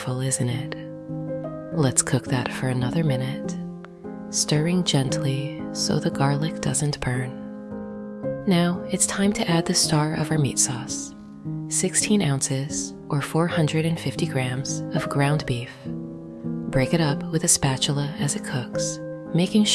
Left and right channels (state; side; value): identical; both; correlation 1.00